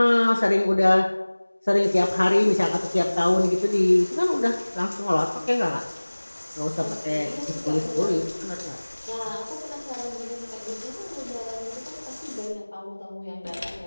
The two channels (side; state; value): both; inverted; correlation -1.00